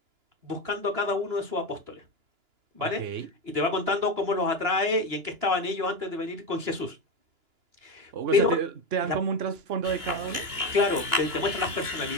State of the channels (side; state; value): left; late; 2.9 ms